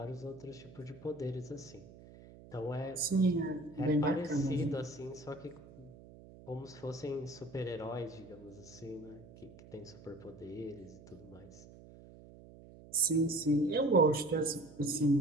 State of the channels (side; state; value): right; noise; hum, 19 dB below the sound